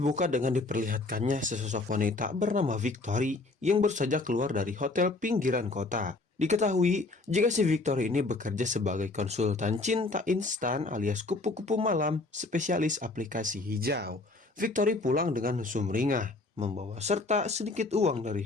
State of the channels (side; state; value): right; quieter; 3.2 dB